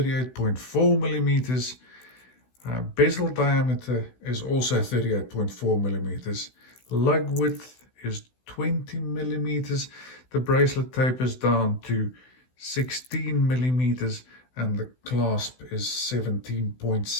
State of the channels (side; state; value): right; late; 16 ms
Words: millimeters. Bezel diameter is also 38.4 millimeters. Lug width is 20 millimeters. The bracelet tapers down to 16 millimeters and the clasp is